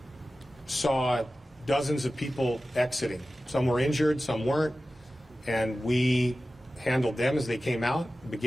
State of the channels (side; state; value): both; normal; correlation 0.95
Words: saw dozens of people exiting. Some were injured, some weren't, and we handled them as they came out,